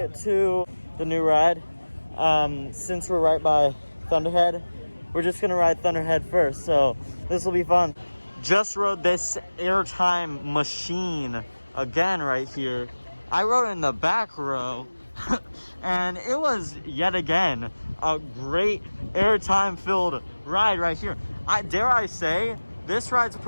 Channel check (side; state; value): both; inverted; correlation -1.00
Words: to the new ride, since we're right by Thunderhead, we're just gonna ride Thunderhead first, so this will be fun. Just rode this airtime machine again right here. I rode in the back row, and it was yet again a great airtime filled ride right here. Dare I say, this ride's